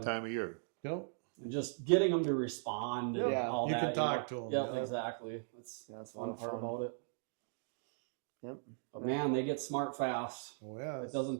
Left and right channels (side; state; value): left; silent; digital silence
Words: time of year. Yep. And just getting them to respond and Yeah. all You that. can talk to 'em, Yep, yeah. exactly. That's Yeah, it's a fun lot of part fun. about it. Yep. But man, they get smart fast. Oh yeah. It doesn't